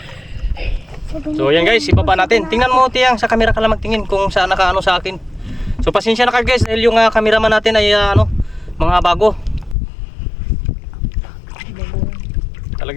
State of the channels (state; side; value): drops out; right; at 9.8 s